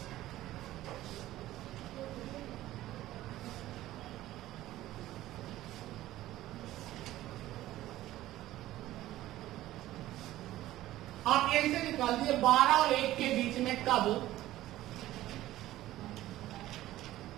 आप यही से निकाल दिए 12 और 1 के बीच में कब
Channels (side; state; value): left; quieter; 15.1 dB